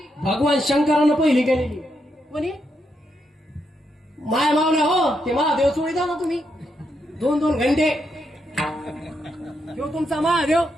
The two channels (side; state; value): both; normal; correlation 0.81